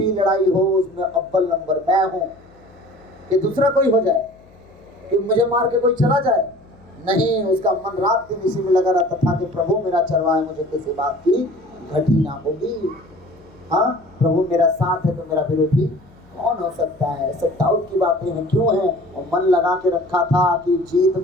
लड़ाई हो उसमें अव्वल नंबर मैं हूँ, कि दूसरा कोई हो जाए, कि मुझे मार के कोई चला जाए, नहीं, उसका मन रात दिन इसी में लगा रहता था कि प्रभु मेरा चरवाहा है, मुझे किसी बात की घटी ना होगी। हाँ, प्रभु मेरा साथ है तो मेरा विरोधी कौन हो सकता है? सब दाऊद की बातें हैं। क्यों है? और मन लगा के रखा था कि जीत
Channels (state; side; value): noise; left; hum, 28 dB below the sound